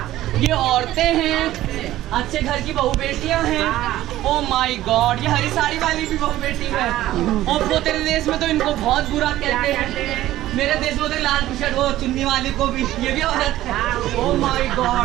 ये औरतें हैं, अच्छे घर की बहू बेटियां हैं। ओ माय गॉड, ये हरी साड़ी वाली भी बहू बेटी है। और वो तेरे देश में तो इनको बहुत बुरा कहते हैं। मेरे देश में तो लाल टी शर्ट वो चुन्नी वाली को भी, ये भी औरत है। ओ माय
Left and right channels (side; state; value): left; quieter; 14.7 dB